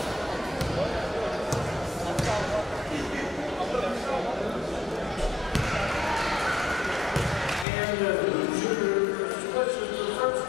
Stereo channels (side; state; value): right; drops out; at 7.7 s